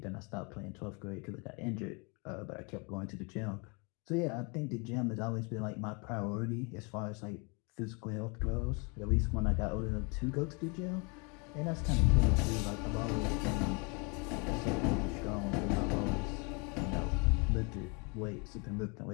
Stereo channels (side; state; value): right; quieter; 32.1 dB